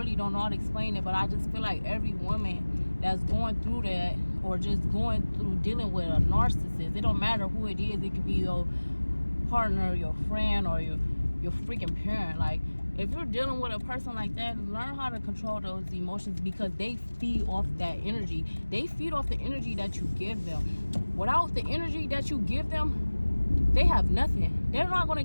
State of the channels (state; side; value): inverted; both; correlation -1.00